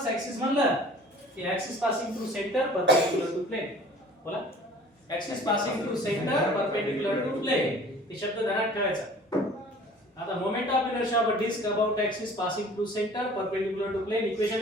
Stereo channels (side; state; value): both; normal; correlation 0.48